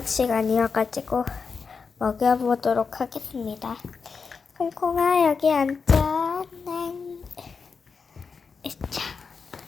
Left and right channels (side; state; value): right; quieter; 5.3 dB